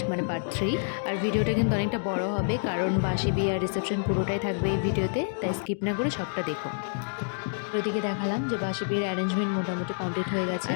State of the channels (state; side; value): silent; right; digital silence